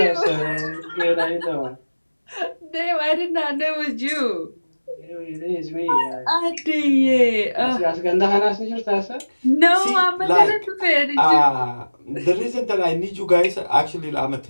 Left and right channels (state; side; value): inverted; both; correlation -1.00